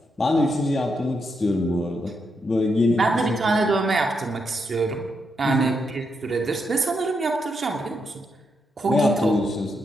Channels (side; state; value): both; normal; correlation 0.81